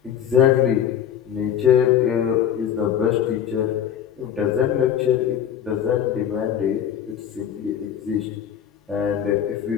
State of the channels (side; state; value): right; quieter; 9.3 dB